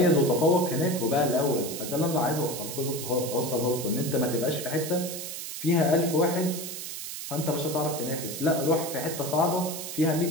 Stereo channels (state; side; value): noise; right; hiss, 7 dB below the sound